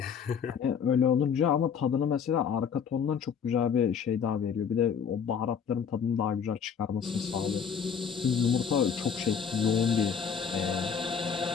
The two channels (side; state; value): right; quieter; 7.0 dB